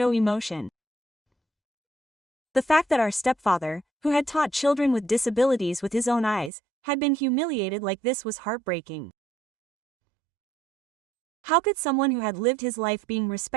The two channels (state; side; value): drops out; left; at 6.5 s